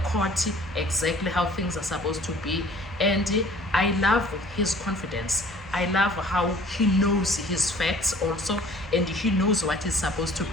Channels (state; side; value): normal; both; correlation 0.52